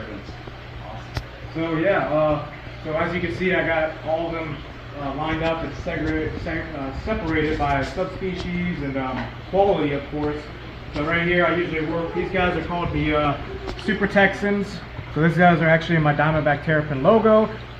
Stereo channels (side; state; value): both; identical; correlation 1.00